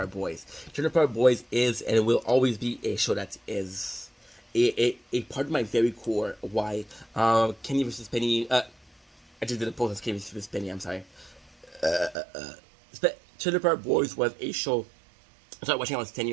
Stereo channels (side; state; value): left; drops out; at 12.2 s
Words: Boys. Trailer Park Boys is and will always be a show that is a part of my very core. Why? Kenny versus Penny. I just did a post as Kenny versus Penny. I'm sorry. Trailer Park Boys was a show I started watching when I was 10